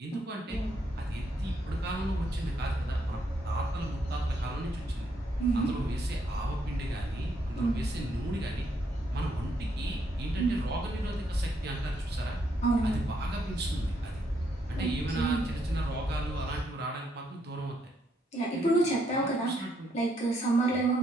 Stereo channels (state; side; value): normal; both; correlation 0.75